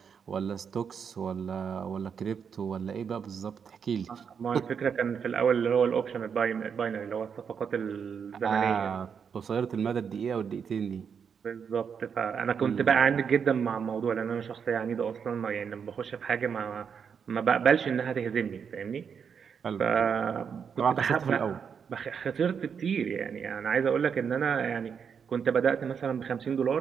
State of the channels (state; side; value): quieter; left; 6.9 dB